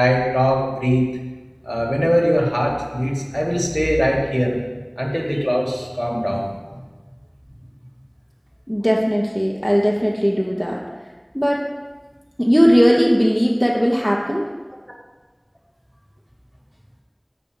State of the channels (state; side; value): identical; both; correlation 1.00